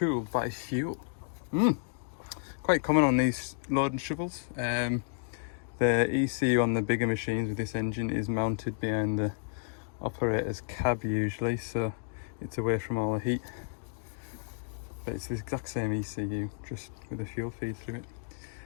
by fuel. Quite common on these loading shovels. The ECU on the bigger machines with this engine is mounted behind the operator's cab usually, so it's away from all the heat. But it's the exact same ECU, just with a fuel feed through it.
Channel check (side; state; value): right; silent; digital silence